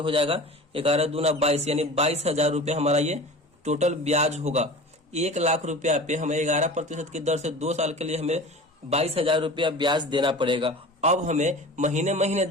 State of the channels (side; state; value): both; normal; correlation 0.37